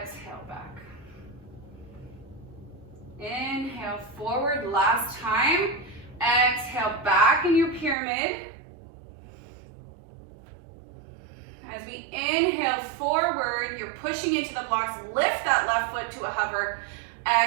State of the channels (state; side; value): drops out; left; at 8.0 s